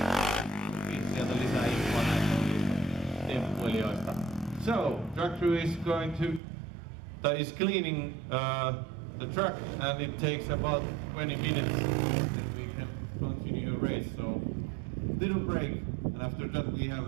Sieltä lisää infoa näistä temppuilijoista. So, track crew is is cleaning the track, and it takes about 20 minutes and we can continue a race. So, little break, and after that we have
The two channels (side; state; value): left; drops out; at 6.4 s